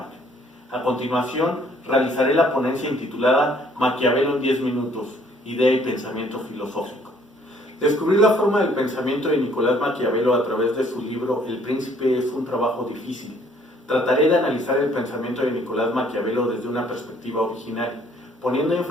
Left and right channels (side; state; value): both; normal; correlation 0.61